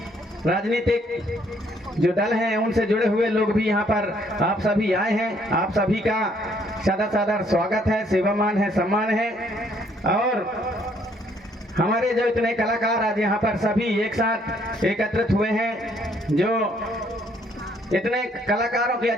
राजनीतिक जो दल हैं उनसे जुड़े हुए लोग भी यहाँ पर आप सभी आए हैं। आप सभी का सादर स्वागत है, सेवामान है, सम्मान है। और हमारे जो इतने कलाकार आज यहाँ पर सभी एक साथ एकत्रित हुए हैं, जो इतने कलाकारों के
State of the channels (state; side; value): normal; both; correlation 0.66